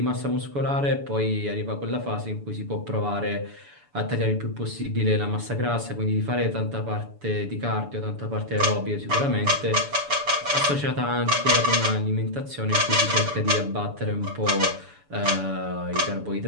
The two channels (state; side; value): late; left; 7.0 ms